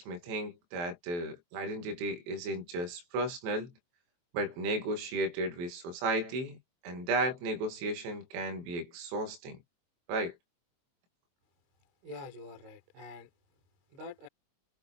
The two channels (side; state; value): left; late; 23 ms